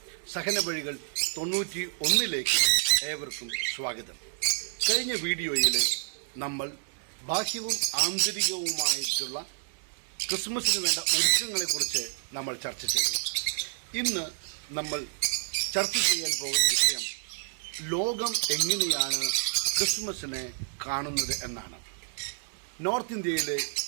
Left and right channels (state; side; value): silent; left; 58 dB below the other